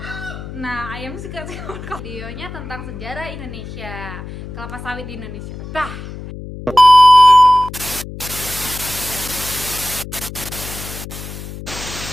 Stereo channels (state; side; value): noise; left; hum, 11 dB below the sound